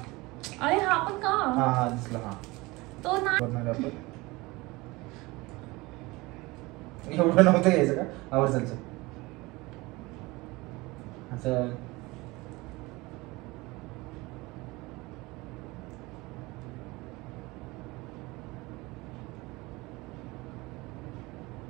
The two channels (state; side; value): quieter; left; 22.4 dB